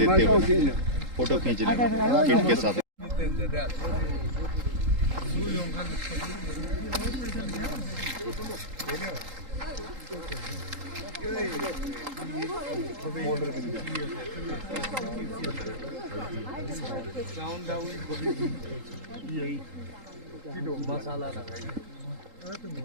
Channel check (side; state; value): left; late; 3.8 ms